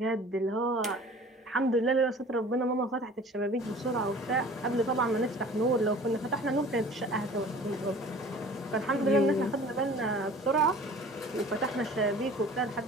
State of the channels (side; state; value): both; normal; correlation 0.45